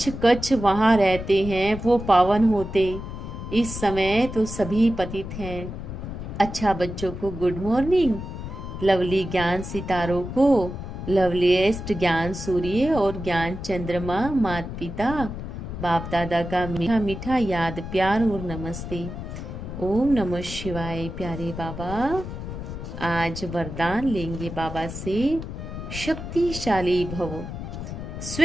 कच्छ वहां रहते हैं वो पावन होते। इस समय तो सभी पतित हैं। अच्छा बच्चों को गुड मॉर्निंग। लवली ज्ञान सितारों को लवलीएस्ट ज्ञान सूर्य और ज्ञान चंद्रमा माता पिता बाप दादा का मीठा मीठा याद प्यार और नमस्ते। ओम नमः शिवाय। प्यारे बाबा, आज वरदान लेंगे बाबा से। शक्तिशाली भव।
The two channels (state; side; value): noise; left; rumble, 8 dB below the sound